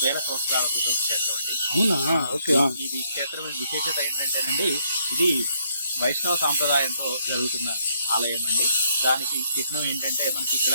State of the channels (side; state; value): both; inverted; correlation -0.71